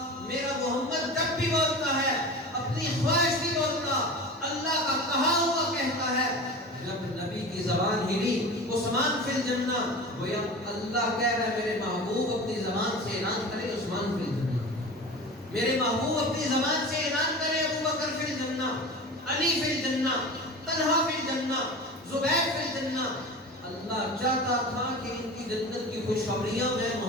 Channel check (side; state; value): both; normal; correlation 0.33